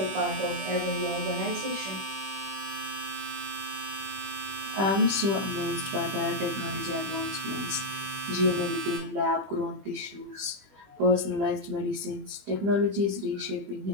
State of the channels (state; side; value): late; left; 20 ms